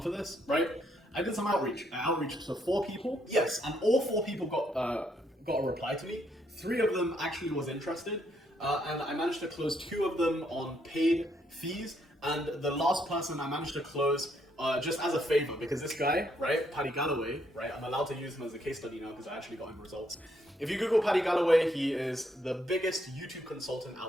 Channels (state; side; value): normal; both; correlation 0.73